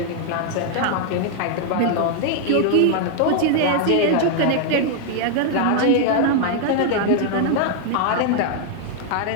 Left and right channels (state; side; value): different; both; correlation 0.00